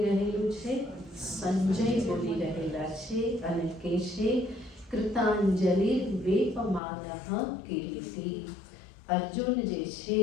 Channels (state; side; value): drops out; right; at 6.8 s